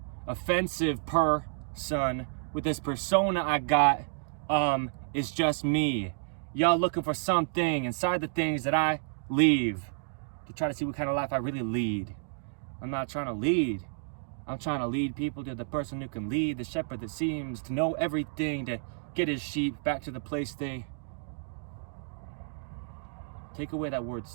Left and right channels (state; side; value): silent; left; digital silence